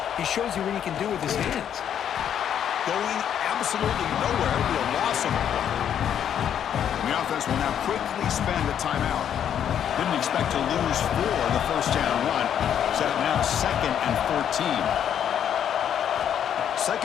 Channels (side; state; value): right; quieter; 9.3 dB